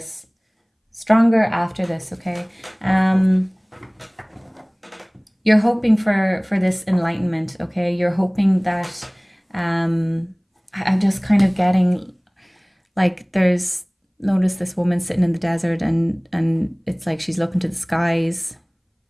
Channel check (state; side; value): identical; both; correlation 1.00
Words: stronger after this. Okay, you're hoping for this enlightenment. Okay, you're hoping that I'm just kind of getting like notice this woman sitting in the desert, and it's like she's looking to the skies.